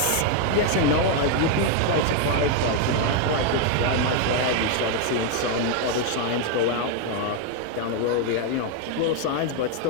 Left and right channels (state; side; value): different; both; correlation 0.01